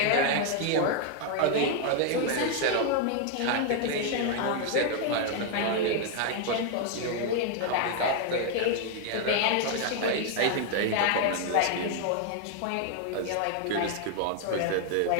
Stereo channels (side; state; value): both; different; correlation 0.00